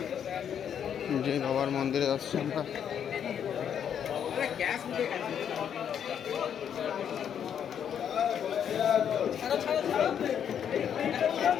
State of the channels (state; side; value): quieter; right; 8.6 dB